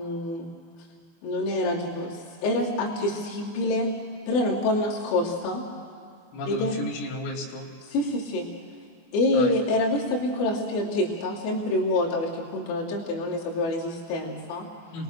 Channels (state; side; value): late; right; 24 ms